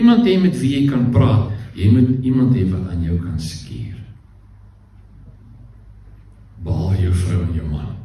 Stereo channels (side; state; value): both; identical; correlation 1.00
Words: hê met wie jy kan praat, jy moet iemand hê wat aan jou kan skeer. Behalwe jou vrou en jou man,